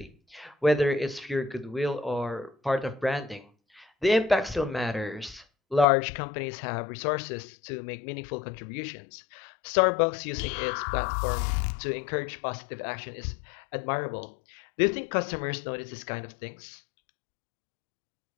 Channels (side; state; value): right; drops out; at 5.9 s